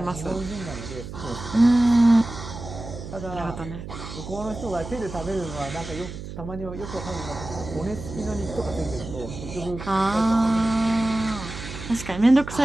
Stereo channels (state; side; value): noise; right; hum, 10 dB below the sound